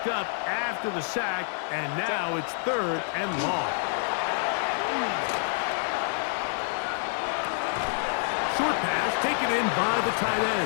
up after the sack, and now it's 3rd and long. Short pass taken in by the tight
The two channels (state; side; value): silent; right; 60 dB below the other